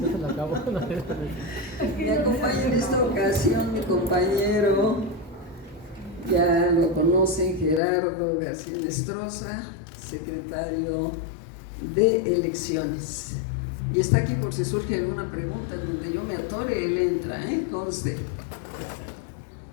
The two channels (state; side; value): drops out; right; at 7.8 s